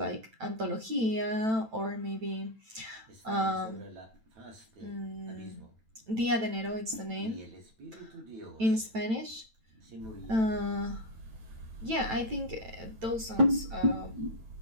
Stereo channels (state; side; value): late; left; 9.1 ms